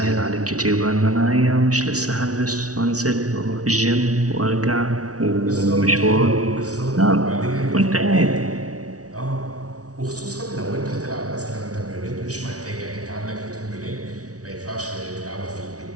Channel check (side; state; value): left; late; 0.67 ms